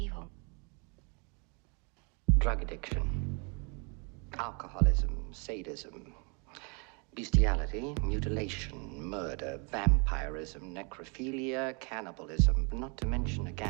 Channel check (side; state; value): left; quieter; 33.9 dB